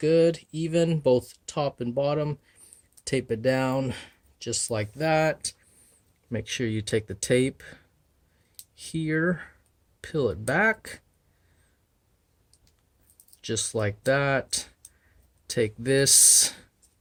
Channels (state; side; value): identical; both; correlation 1.00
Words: even both top and bottom. Tape it down just like that. Make sure you take the tape here, peel it back just like that. Take this,